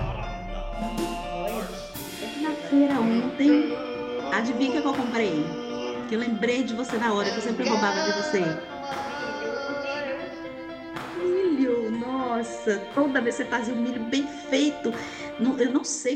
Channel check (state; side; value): identical; both; correlation 1.00